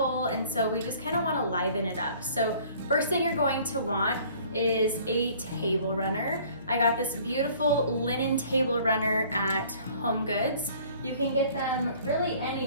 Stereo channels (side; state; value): both; inverted; correlation -0.53